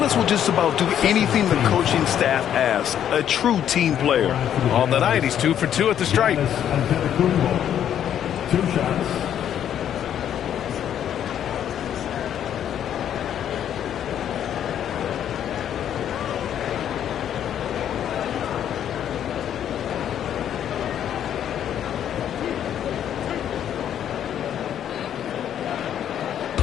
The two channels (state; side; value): quieter; right; 9.9 dB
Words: will just about do anything the coaching staff asks. A true team player. On the night, he's 2 for 2 at the stripe. 2 shots.